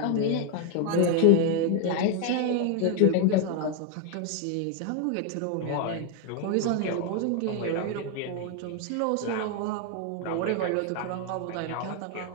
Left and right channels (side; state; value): both; different; correlation 0.01